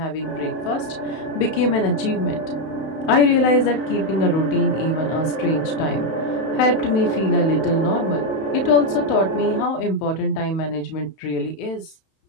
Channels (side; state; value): right; late; 31 ms